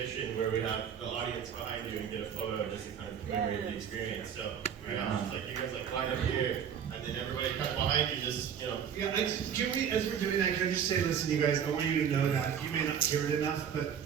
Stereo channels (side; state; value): left; quieter; 8.2 dB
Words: where we have the audience behind you and get a photo just to kind of commemorate the experience. So we have just like you guys like line up here, and then everybody kind of behind you just, you know. Yeah, can we, as we're doing that, can I just say, listen, you guys, I want you to know that you may not hear it enough,